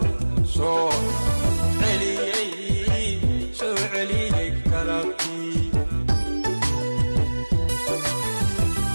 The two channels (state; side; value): inverted; both; correlation -1.00